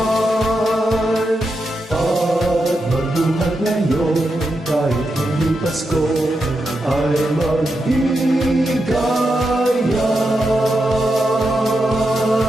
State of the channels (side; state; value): both; normal; correlation 0.86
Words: At magbuhat ngayon kahit hindi Pasko ay magbigayan.